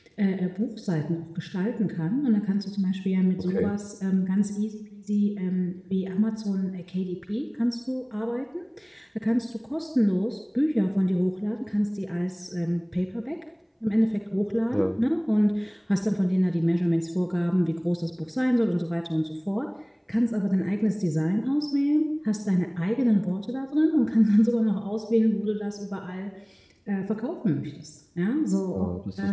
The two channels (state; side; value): identical; both; correlation 1.00